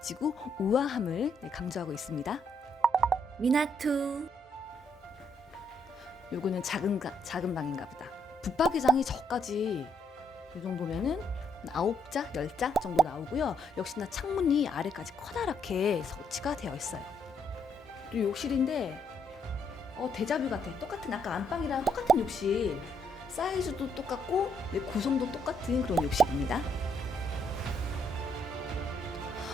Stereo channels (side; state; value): both; normal; correlation 0.73